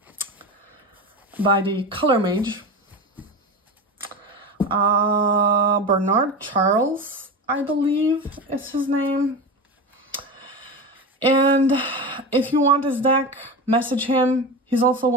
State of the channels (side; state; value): both; normal; correlation 0.24